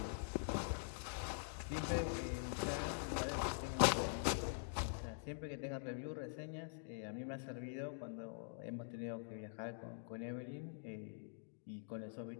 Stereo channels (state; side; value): silent; right; digital silence